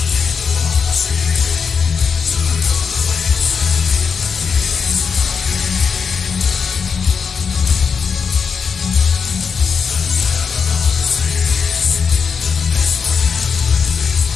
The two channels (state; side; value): quieter; right; 5.9 dB